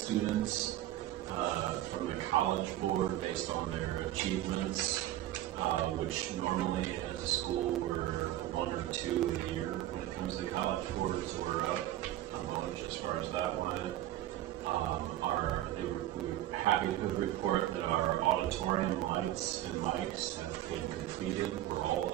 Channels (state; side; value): quieter; left; 14.0 dB